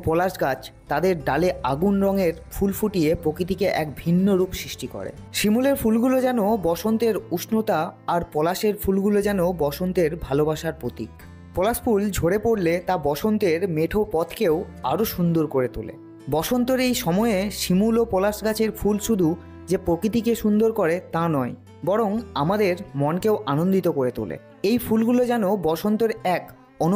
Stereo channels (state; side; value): identical; both; correlation 1.00